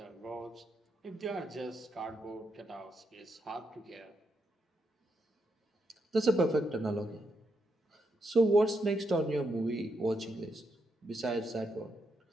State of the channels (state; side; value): normal; both; correlation 0.81